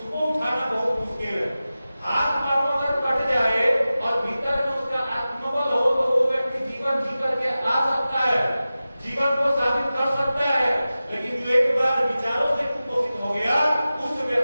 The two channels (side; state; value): both; inverted; correlation -0.95